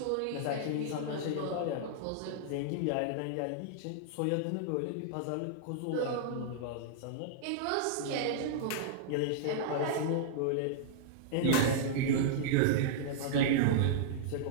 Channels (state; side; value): different; both; correlation -0.02